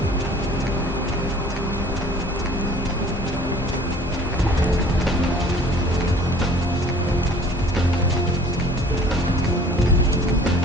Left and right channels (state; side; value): normal; both; correlation 0.50